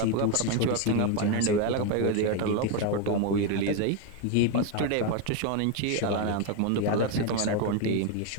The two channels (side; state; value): both; different; correlation 0.02